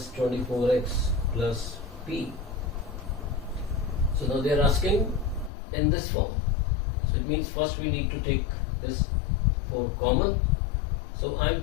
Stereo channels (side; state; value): right; drops out; at 5.5 s